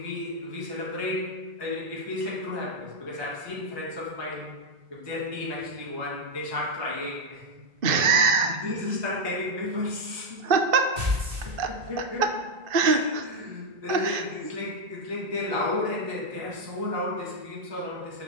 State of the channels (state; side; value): late; left; 2.5 ms